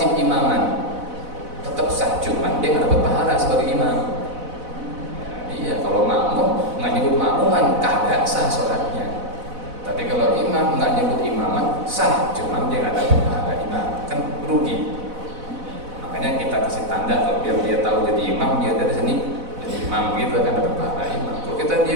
imaman, tetap sah, cuman dia nggak dapat pahala sebagai imam. Iya, kalau makmum nggak nyebut makmuman kagak sah sholatnya. Tapi kalau imam nggak nyebut imaman sah, cuman dia nggak dapat pahala imam, kan rugi. Makanya kita kasih tanda kalau biar dia tahu jadi imam, dia dari sini jadi imam gitu kan dapat pahala imam. Kalau kita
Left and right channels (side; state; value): left; late; 4.0 ms